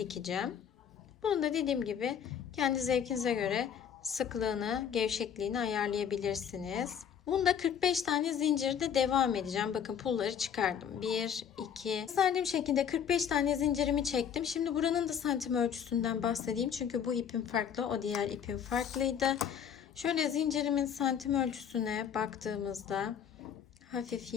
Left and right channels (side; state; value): right; quieter; 8.2 dB